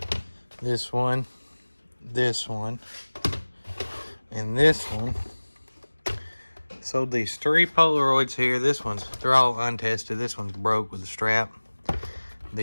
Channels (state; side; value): inverted; both; correlation -1.00